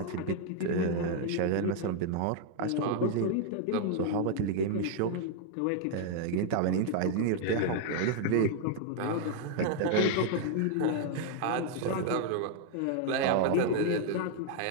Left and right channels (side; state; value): both; different; correlation 0.00